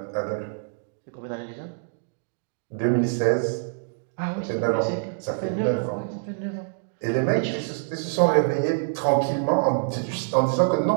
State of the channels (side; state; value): left; silent; digital silence